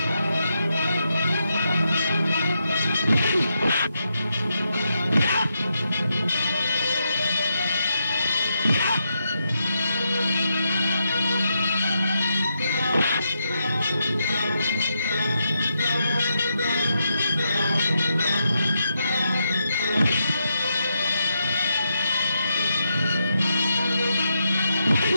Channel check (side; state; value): both; inverted; correlation -0.83